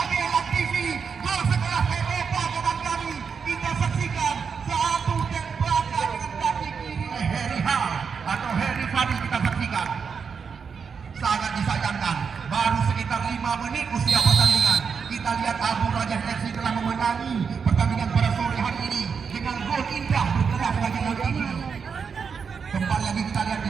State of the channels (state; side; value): quieter; left; 6.1 dB